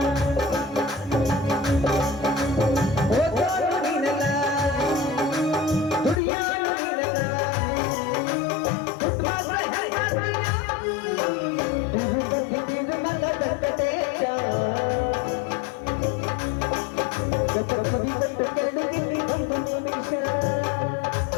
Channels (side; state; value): right; drops out; at 6.2 s